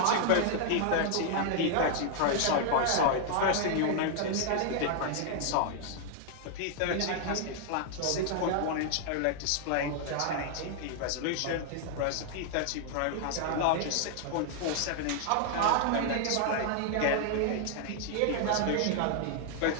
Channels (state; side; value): different; both; correlation 0.00